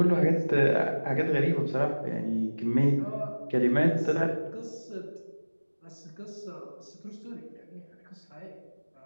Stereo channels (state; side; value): inverted; both; correlation -1.00